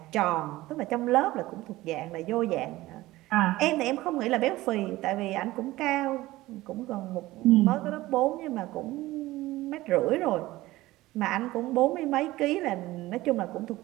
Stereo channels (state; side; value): quieter; left; 17.7 dB